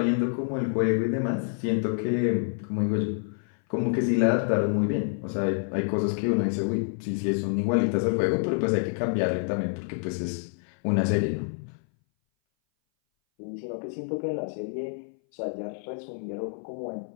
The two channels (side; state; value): right; silent; 59 dB below the other